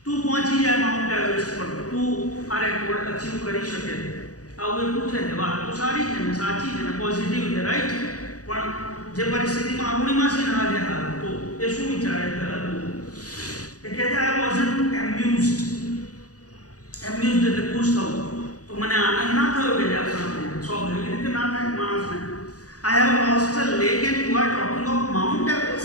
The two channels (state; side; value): late; right; 0.67 ms